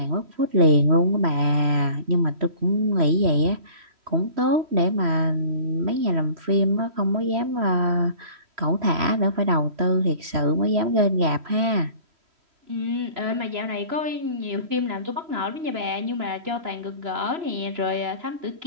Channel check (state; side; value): late; left; 3.0 ms